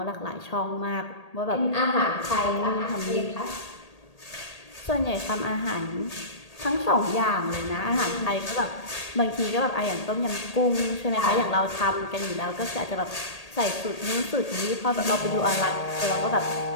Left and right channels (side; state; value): right; late; 1.8 ms